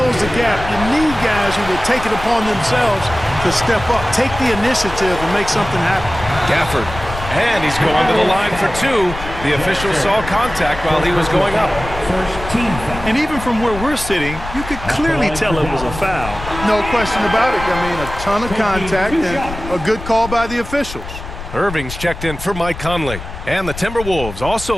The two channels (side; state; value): left; noise; rumble, 10 dB below the sound